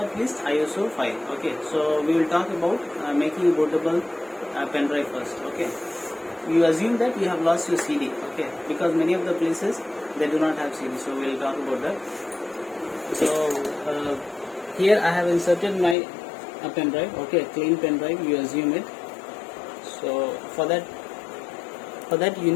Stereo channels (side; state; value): right; drops out; at 16.0 s